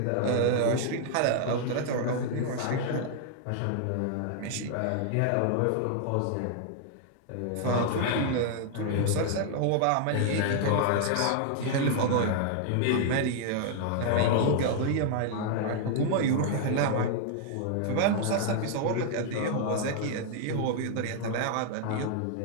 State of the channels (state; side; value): different; both; correlation 0.00